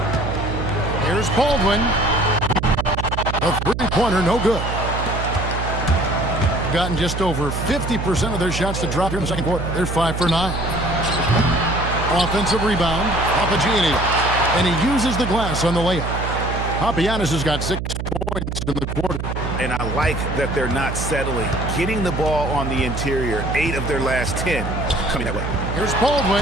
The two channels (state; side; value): noise; right; hum, 4 dB below the sound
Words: Here's Baldwin. A 3-pointer, no good. Gotten just over 50% of their shots to drop here in the second quarter. They're 5 for 9. Offensive rebound, Papagiannis, and he uses the glass on the layup. Papagiannis has got 6 points in the quarter. And I like that they're not settling. Getting the ball on the interior, 8 of their last 10 coming that way. Here's